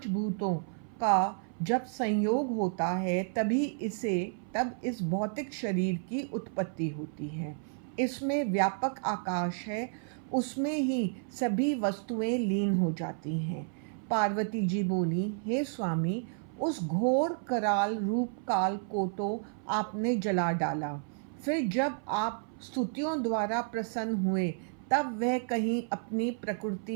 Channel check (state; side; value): silent; left; 57 dB below the other